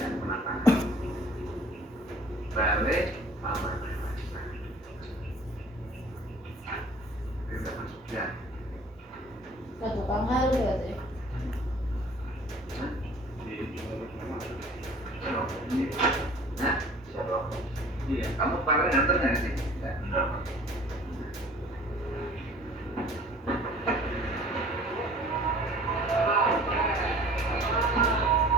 penataan balik aman itu udah masuk ya Satu kamar berarti. nah siapa iya kamu kemarin nganter nggak sih enggak.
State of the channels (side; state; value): both; normal; correlation 0.49